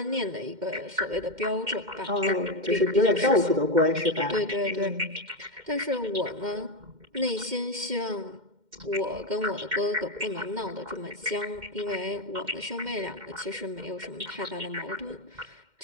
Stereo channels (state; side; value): late; left; 2.1 ms